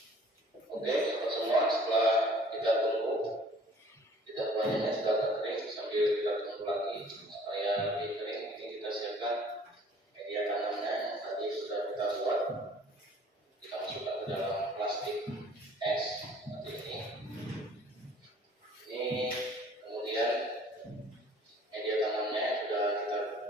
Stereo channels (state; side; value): normal; both; correlation 0.53